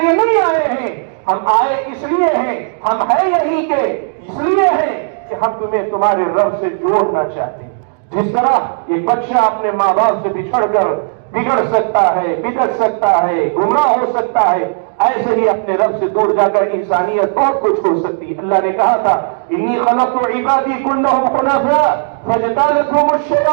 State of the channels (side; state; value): left; silent; digital silence